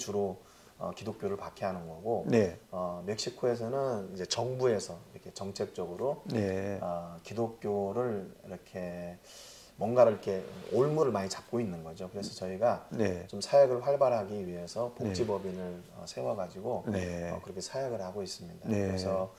기독교를 박해하는 거고, 네. 멕시코에서는 이제 정부에서 이렇게 정책적으로 네. 기독교를 이렇게 뭔가를 이렇게 올무를 많이 잡고 있는 거죠. 그래서 저희가 네. 좀 사역을 활발하기 위해서 복지법인을 세워가지고 네. 그렇게 사역을 하고 있습니다. 네. 그래서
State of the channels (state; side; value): identical; both; correlation 1.00